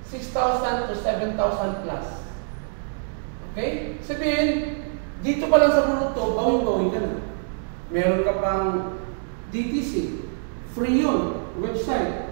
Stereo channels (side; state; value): left; silent; digital silence